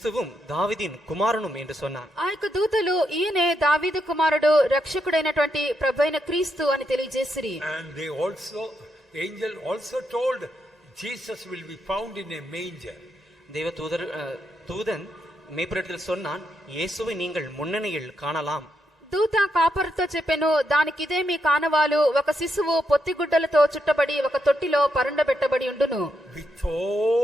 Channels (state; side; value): normal; both; correlation 0.81